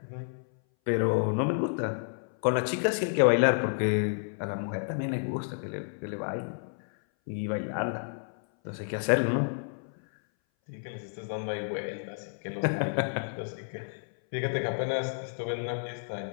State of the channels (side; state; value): right; silent; 57 dB below the other